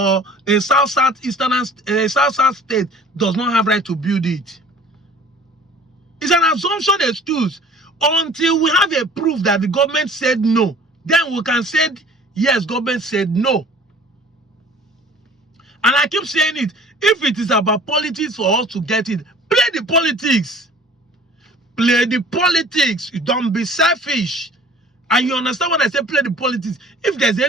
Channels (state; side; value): normal; both; correlation 0.48